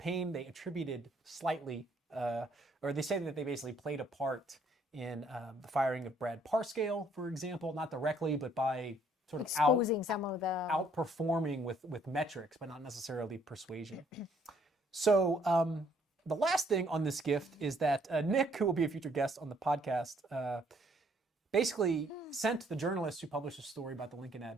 They attributed slightly, or they say that they basically played a part in the firing of Brad Parscale, for example, not directly, but by sort of exposing some of the outperforming with metrics, but not necessarily persuasion. So the last thing on this gift is that Nick, who will be a future guest on the podcast, basically sent the journalist who published a story about the Lincoln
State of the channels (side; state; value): both; normal; correlation 0.65